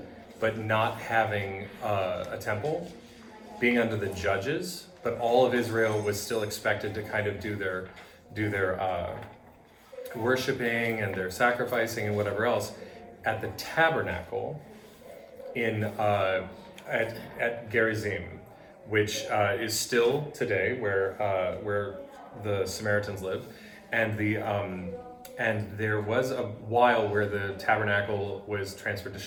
but not having a temple, being under the judges, but all of Israel was still expected to kind of do their worshiping and their sacrificing and whatever else at the tabernacle at Gerizim, which is still today where the Samaritans lived, and and there was a while where the tabernacle was transferred to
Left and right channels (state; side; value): identical; both; correlation 1.00